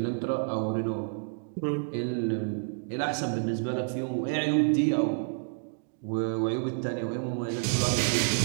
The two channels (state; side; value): silent; left; digital silence